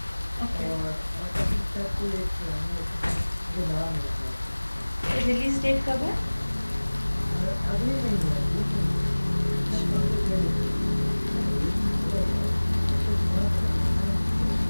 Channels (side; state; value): both; inverted; correlation -1.00